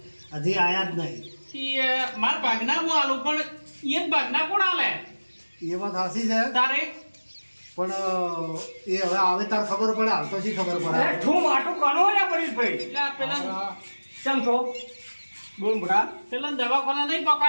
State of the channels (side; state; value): both; inverted; correlation -1.00